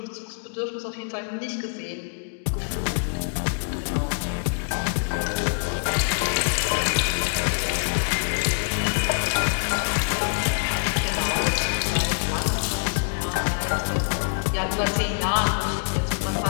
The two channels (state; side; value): silent; right; digital silence